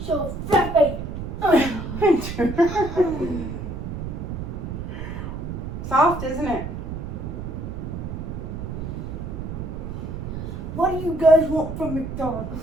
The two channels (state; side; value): noise; right; rumble, 6 dB below the sound